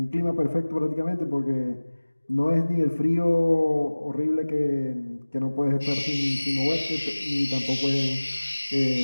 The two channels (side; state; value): both; inverted; correlation -1.00